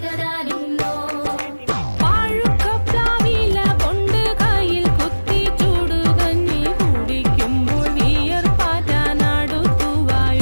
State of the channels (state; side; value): inverted; both; correlation -1.00